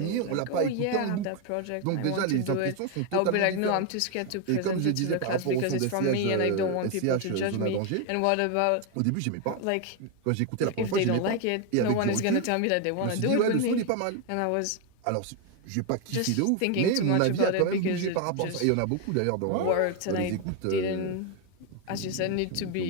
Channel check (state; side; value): different; both; correlation 0.01